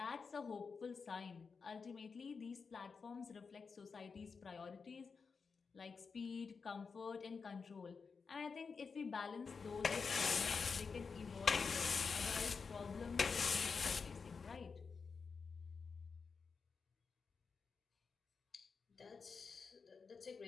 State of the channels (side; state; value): right; quieter; 5.2 dB